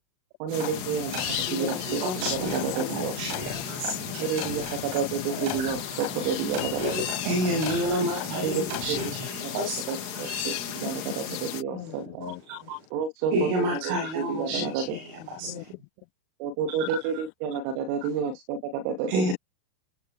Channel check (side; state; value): left; late; 38 ms